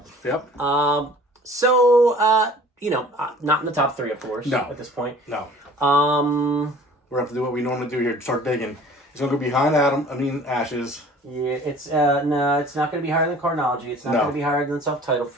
Yep. So, not in the top 3, of course. No. At this point. No. We're gonna have to do what we normally do here. Start digging. It's gonna go behind Ashes. Yeah, it's it's not gonna be higher than Chronology. It's not gonna be higher than Self-Titled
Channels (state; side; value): normal; both; correlation 0.48